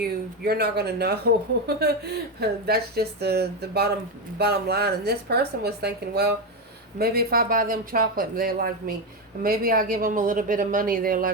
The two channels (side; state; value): both; normal; correlation 0.10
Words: you're not gonna know. That's just the bottom line. And this person was thinking, well, maybe if I buy them chocolate, they'll like me. Maybe I give them a little bit of money, they'll